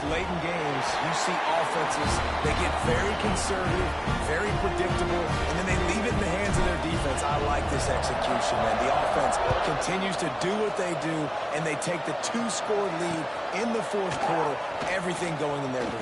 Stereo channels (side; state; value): both; identical; correlation 1.00